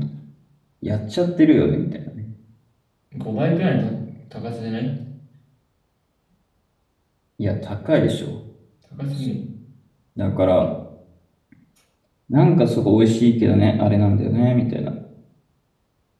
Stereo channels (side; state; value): both; identical; correlation 1.00